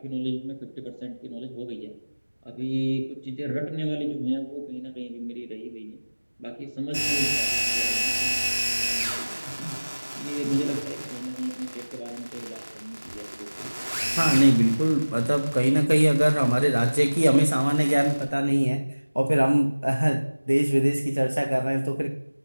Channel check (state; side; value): inverted; both; correlation -1.00